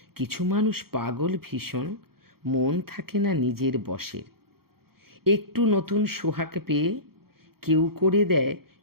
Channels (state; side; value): late; left; 0.94 ms